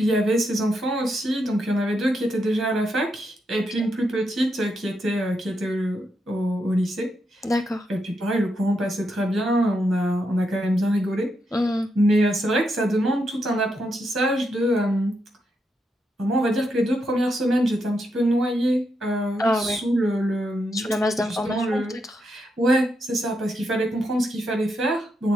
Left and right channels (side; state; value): both; normal; correlation 0.82